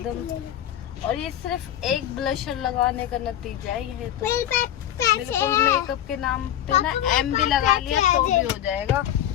और ये सिर्फ एक ब्लशर लगाने का नतीजा है ये तो। बिल्कुल मेकअप के नाम पे ना एम भी लगा लिया तो भी हो जाएगा।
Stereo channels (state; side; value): quieter; right; 11.5 dB